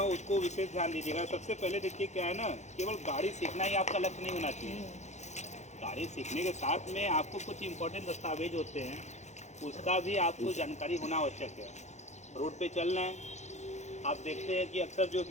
उसको विशेष ध्यान दीजिएगा। सबसे पहले देखिए क्या है ना, केवल गाड़ी सीखना ही आपका लक्ष्य नहीं होना चाहिए। गाड़ी सीखने के साथ में आपको कुछ इम्पोर्टेंट दस्तावेज होते हैं, उसका भी आपको जानकारी होना आवश्यक है। रोड पे चलना है, आप देखते हैं कि अक्सर जो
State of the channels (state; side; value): late; right; 0.33 ms